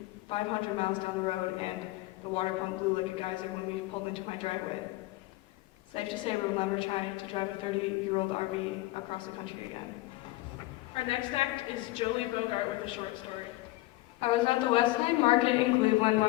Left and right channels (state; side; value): quieter; right; 18.7 dB